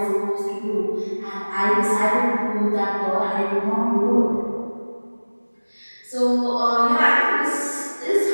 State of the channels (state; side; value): inverted; both; correlation -1.00